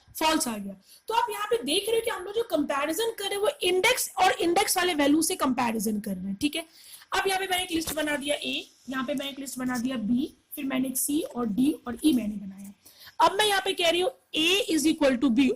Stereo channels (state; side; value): identical; both; correlation 1.00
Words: फॉल्स आ गया। तो आप यहाँ पे देख रहे हो कि हम लोग जो कंपैरिजन कर रहे हैं वो इंडेक्स और इंडेक्स वाले वैल्यू से कंपैरिजन कर रहे हैं, ठीक है। अब यहाँ पे मैंने एक लिस्ट बना दिया A, यहाँ पे मैंने एक लिस्ट बना दिया B, फिर मैंने एक C और D और E मैंने बनाया। अब मैं यहाँ पे कह रही हूँ A is equal to B,